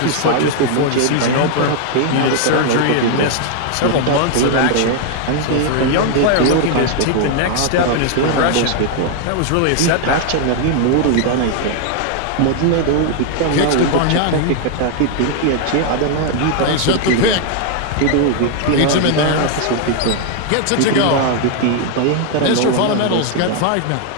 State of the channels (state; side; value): different; both; correlation 0.00